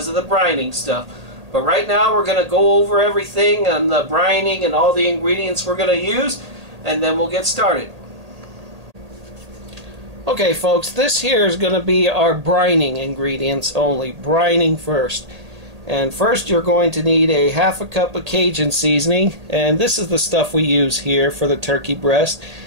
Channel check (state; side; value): late; left; 1.8 ms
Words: of the brining stuff. But right now we're going to go over everything and the brining and all the ingredients we're going to use, and then we'll get started. Okay folks, this here is going to be our brining ingredients only. Brining first. And first you're going to need a ½ cup of Cajun seasoning, and this is the stuff we use here for the turkey breast.